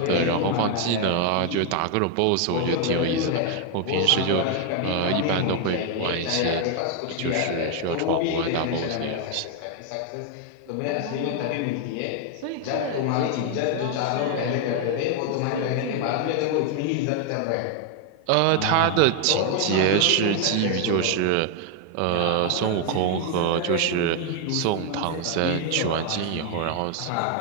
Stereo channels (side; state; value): both; different; correlation 0.01